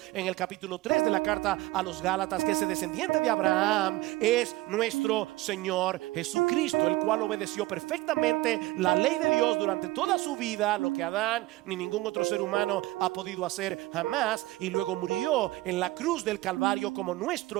en el capítulo 3 de la carta a los Gálatas que ese descendiente de Abraham es nuestro Señor Jesucristo, el cual obedeció perfectamente la ley de Dios durante toda su vida, lo que Adán ni ningún otro ser humano ha podido hacer jamás, y luego murió en la cruz del Calvario como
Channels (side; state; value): left; quieter; 18.8 dB